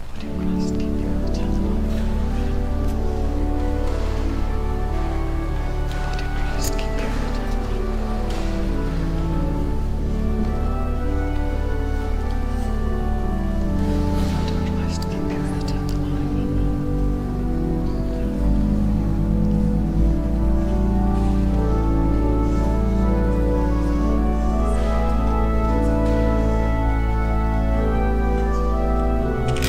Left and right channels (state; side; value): identical; both; correlation 1.00